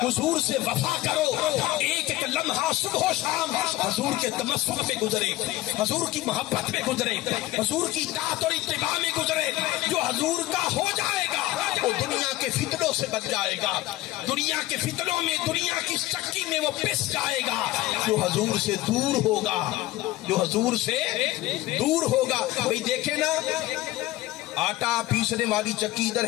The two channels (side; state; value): right; quieter; 16.8 dB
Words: حضور سے وفا کرو، ایک ایک لمحہ صبح و شام حضور کے تمسک پہ گزرے، حضور کی محبت میں گزرے، حضور کی اطاعت اور اتباع میں گزرے۔ جو حضور کا ہو جائے گا وہ دنیا کے فتنوں سے بچ جائے گا، دنیا کے فتنوں میں، دنیا کی چکی میں وہ پس جائے گا۔ جو حضور سے دور ہوگا، جو حضور سے دور ہوگا، بھئی دیکھیں نا آٹا پیسنے والی چکی ادھر